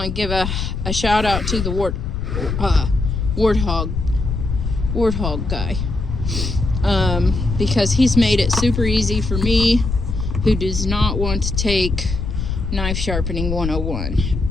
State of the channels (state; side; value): noise; left; rumble, 3 dB below the sound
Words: give a shout out to the Warthog guy, because he's made it super easy for me who does not want to take knife sharpening